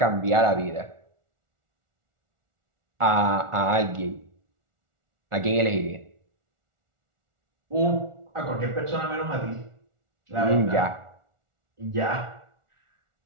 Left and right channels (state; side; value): late; left; 1.4 ms